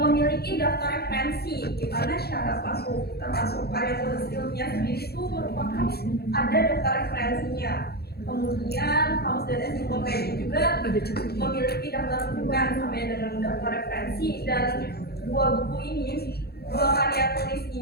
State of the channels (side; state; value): right; late; 0.46 ms